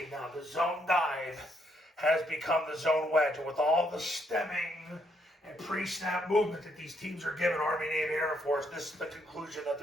now. The zone dive has become the zone wedge, and with all the stemming and pre-snap movement that these teams are giving, Army, Navy, Air Force, this is the conclusion that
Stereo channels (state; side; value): normal; both; correlation 0.73